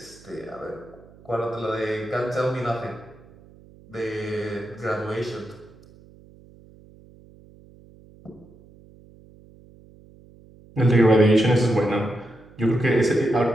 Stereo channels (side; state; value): right; noise; hum, 24 dB below the sound